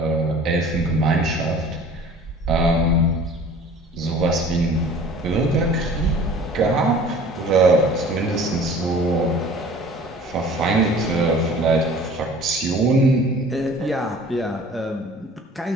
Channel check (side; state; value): both; normal; correlation 0.47